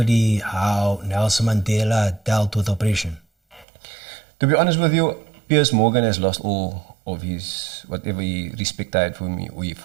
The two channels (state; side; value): drops out; left; at 3.7 s